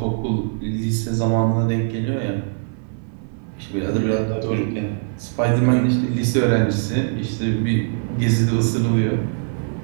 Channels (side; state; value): left; silent; 65 dB below the other